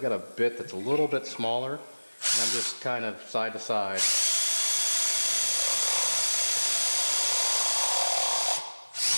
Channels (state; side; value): inverted; both; correlation -1.00